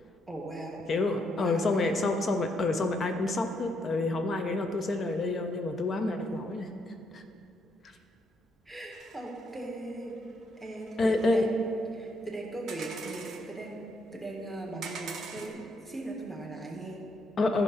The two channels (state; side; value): normal; both; correlation 0.75